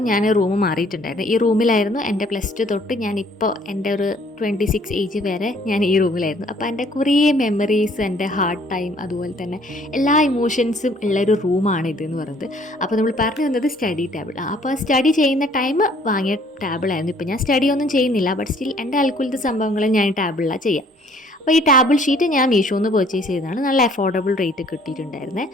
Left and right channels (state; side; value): normal; both; correlation 0.59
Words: ഞാൻ റൂം മാറിയിട്ടുണ്ടായിരുന്നു. ഈ റൂമിലായിരുന്നു എൻ്റെ +2 തൊട്ട് ഞാനിപ്പോൾ എൻ്റെ ഒരു 26 ഏജ് വരെ ഞാൻ ഈ റൂമിലായിരുന്നു. അപ്പോൾ എൻ്റെ കുറേ മെമ്മറീസ്, എൻ്റെ ഹാർഡ് ടൈം, അതുപോലെ തന്നെ എല്ലാ ഇമോഷൻസും ഉള്ളൊരു റൂമാണ് ഇതെന്ന് പറയുന്നത്. അപ്പോൾ നമ്മൾ പറഞ്ഞു വന്നത് സ്റ്റഡി ടേബിൾ. അപ്പോൾ സ്റ്റഡി ചെയ്യുന്ന ടൈം വാങ്ങിയ ടേബിളായിരുന്നു. ഇപ്പോൾ ഞാൻ സ്റ്റഡിയൊന്നും ചെയ്യുന്നില്ല, ബട്ട് സ്റ്റിൽ എൻ്റെ അൽക്കുലത്തെ സംഭവങ്ങൾ ഞാൻ ടേബിളിലാണ് ചെയ്യുക. അപ്പോൾ ഈ ടേബിൾ ഷീറ്റ് ഞാൻ മീഷോയിൽ നിന്ന് പർച്ചേസ് ചെയ്തതാണ്. നല്ല അഫോർഡബിൾ റേറ്റ് കിട്ടിയിട്ടുണ്ടായിരുന്നേ.